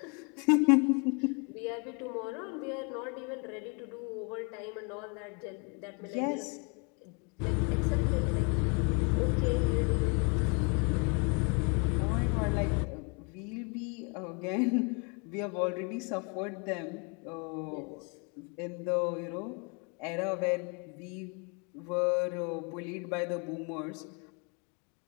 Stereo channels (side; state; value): right; quieter; 34.4 dB